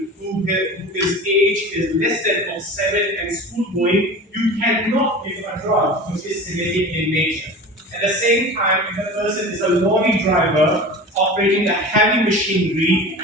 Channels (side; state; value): both; normal; correlation 0.35